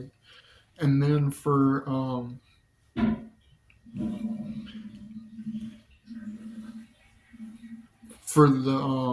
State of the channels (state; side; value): identical; both; correlation 1.00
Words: And then for